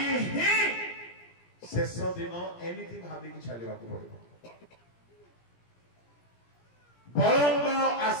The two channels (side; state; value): right; late; 17 ms